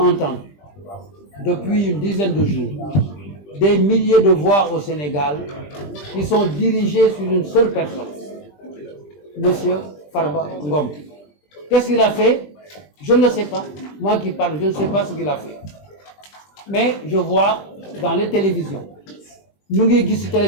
depuis une dizaine de jours, des milliers de voix au Sénégal qui sont dirigées sur une seule personne, Monsieur Farba Ngom. Qu'est-ce qu'il a fait? Je ne le sais pas. Moi qui parle, je ne sais pas ce qu'il a fait. Mais je vois dans les télévisions, ñu ngi gis ci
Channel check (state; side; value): late; right; 20 ms